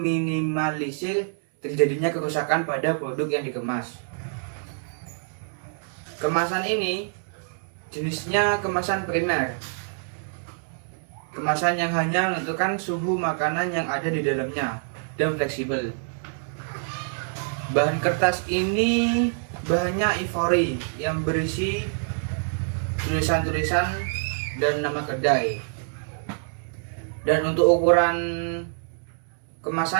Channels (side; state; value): left; silent; digital silence